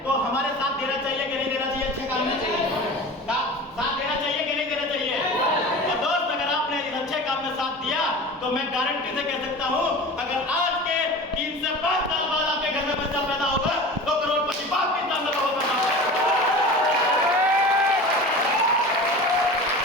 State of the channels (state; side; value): normal; both; correlation 0.35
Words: तो हमारे साथ देना चाहिए कि नहीं देना चाहिए? अच्छे काम में साथ देना चाहिए कि नहीं देना चाहिए? और दोस्त, अगर आपने इस अच्छे काम में साथ दिया तो मैं गारंटी से कह सकता हूं, अगर आज के 3 से 5 साल बाद आपके घर में बच्चा पैदा होगा तो करोड़पति बाप के सामने होगा।